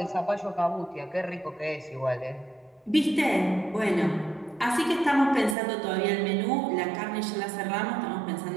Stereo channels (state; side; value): drops out; left; at 5.6 s